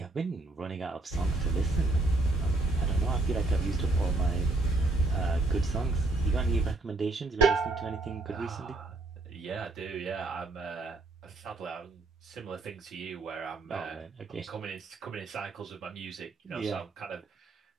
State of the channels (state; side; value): quieter; left; 3.1 dB